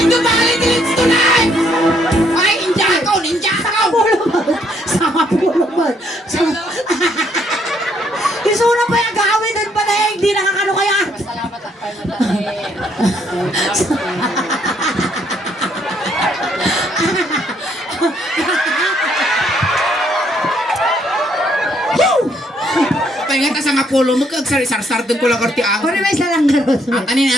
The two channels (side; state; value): both; normal; correlation 0.70